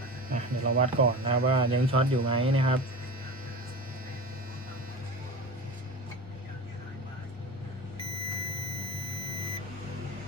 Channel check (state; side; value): normal; both; correlation 0.31